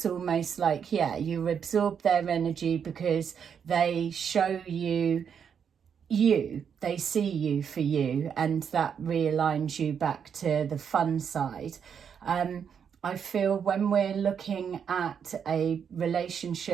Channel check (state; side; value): quieter; left; 7.4 dB